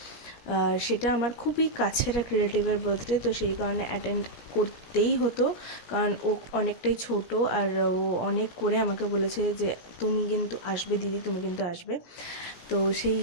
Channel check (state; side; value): late; right; 17 ms